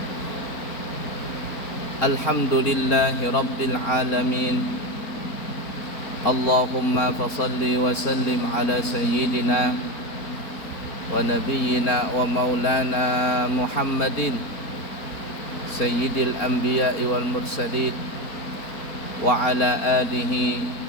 Alhamdulillahi rabbil alamin. Allahumma fasalli wa sallim ala sayyidina wa nabiyyina wa maulana Muhammadin sayyidil anbiya'i wal mursalin wa ala alihi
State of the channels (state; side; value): late; right; 4.3 ms